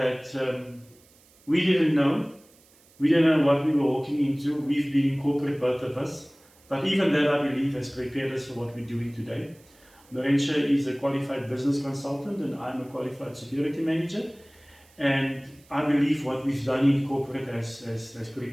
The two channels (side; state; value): right; noise; hiss, 29 dB below the sound